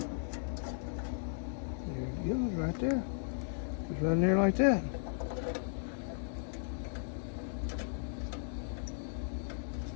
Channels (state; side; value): silent; right; digital silence